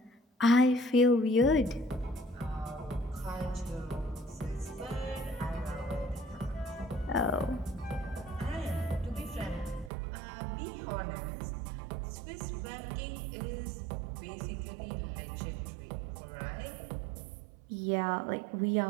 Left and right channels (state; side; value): drops out; left; at 9.9 s